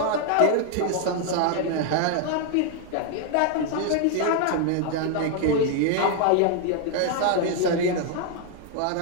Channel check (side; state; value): both; different; correlation 0.00